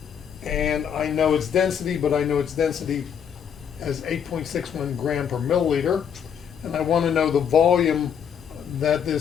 and I know its density, but I know its density as 8.61 gram per milliliter, and I want to know the volume that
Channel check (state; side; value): quieter; right; 8.0 dB